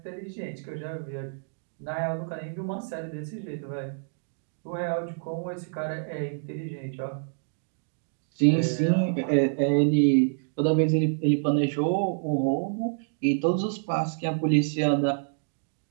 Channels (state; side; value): silent; left; digital silence